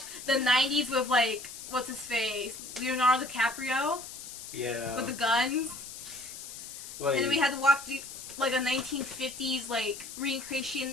the 90s with like, what's his face? Leonardo DiCaprio Yeah. with the guns. Like, And then we had to watch like a 1950s like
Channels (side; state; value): left; noise; hiss, 11 dB below the sound